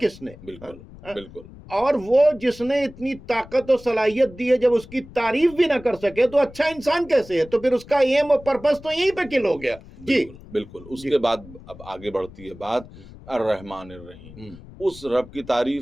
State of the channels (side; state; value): left; noise; rumble, 19 dB below the sound